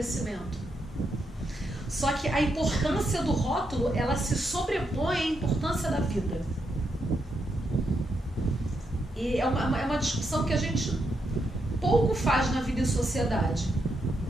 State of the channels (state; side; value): normal; both; correlation 0.81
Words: Só que a importância do rótulo, ela se sobrepõe à importância da vida. E é uma discussão que a gente pouco faz na vida e sociedade.